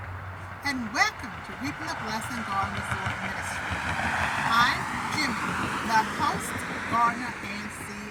and welcome to Reaping the Blessing Garden Resort Ministry. I'm Jimmy, the host, gardener, and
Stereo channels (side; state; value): both; identical; correlation 1.00